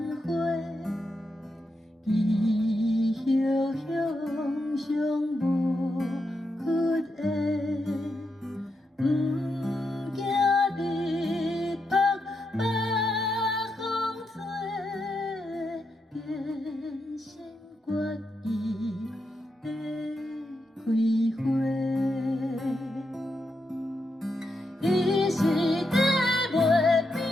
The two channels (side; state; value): both; normal; correlation 0.84